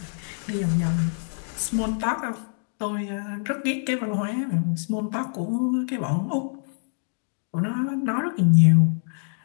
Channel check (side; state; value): right; silent; digital silence